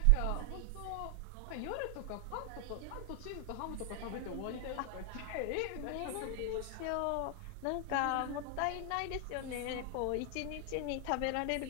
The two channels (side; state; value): both; different; correlation 0.00